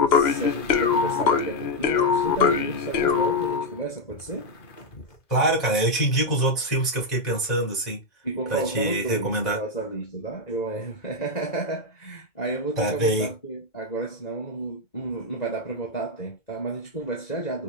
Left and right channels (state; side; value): late; right; 2.2 ms